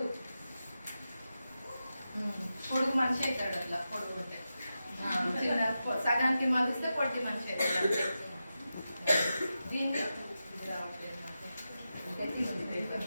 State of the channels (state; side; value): inverted; both; correlation -0.91